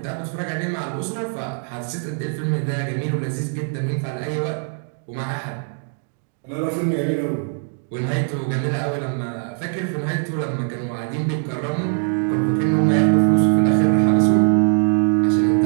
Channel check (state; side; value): silent; left; 65 dB below the other